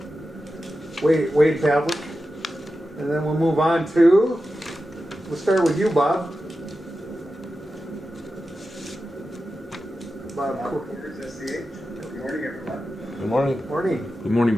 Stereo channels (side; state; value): both; normal; correlation 0.92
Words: Wade Pavlik. And then we'll move on to, we'll start with you, Bob. Bob Cooper. Good morning, everyone. Good morning. Morning. Good morning,